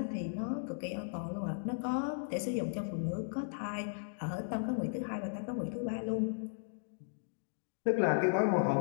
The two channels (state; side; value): silent; right; digital silence